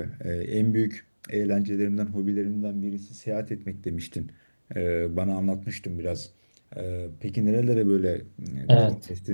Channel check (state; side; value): inverted; both; correlation -1.00